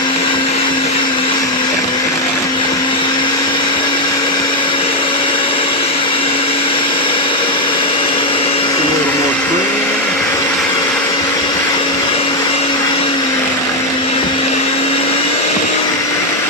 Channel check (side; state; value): both; normal; correlation 0.03